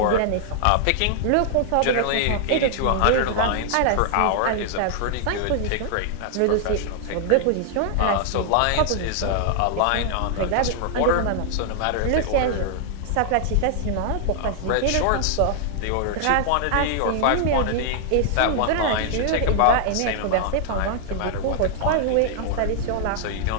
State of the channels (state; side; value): different; both; correlation 0.00